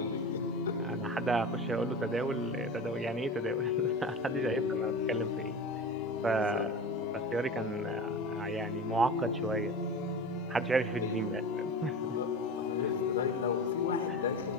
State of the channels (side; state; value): both; normal; correlation 0.30